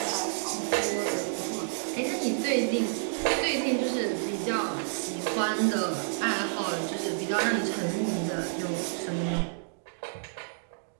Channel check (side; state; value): left; silent; digital silence